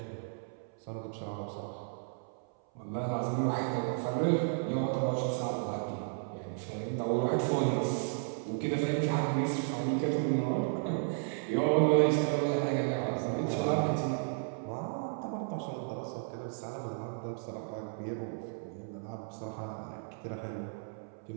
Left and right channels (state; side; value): silent; left; 55 dB below the other